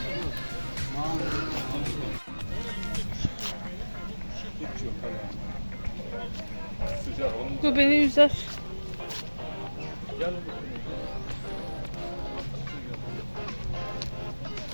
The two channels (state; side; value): inverted; both; correlation -1.00